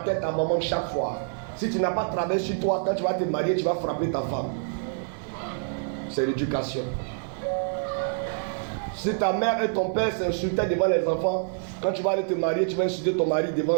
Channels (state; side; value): silent; left; 60 dB below the other